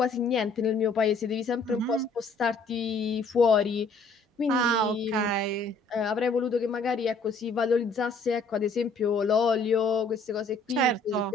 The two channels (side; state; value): right; quieter; 3.5 dB